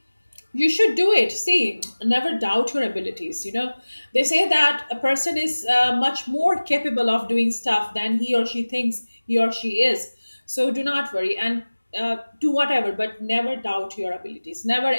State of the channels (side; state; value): both; inverted; correlation -1.00